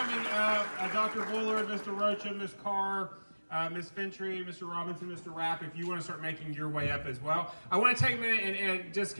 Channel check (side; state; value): both; inverted; correlation -1.00